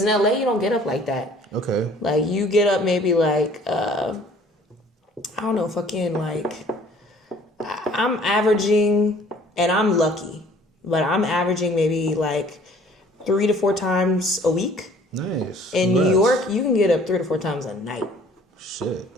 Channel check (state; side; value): normal; both; correlation 0.54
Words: in LA, you don't get up like that. Okay. You get up maybe I'm averaging, and I'm lucky, but I'm averaging maybe 3 to 4 times a week. Nice. In New York, you can get up 3 to 4 times a night. Shit.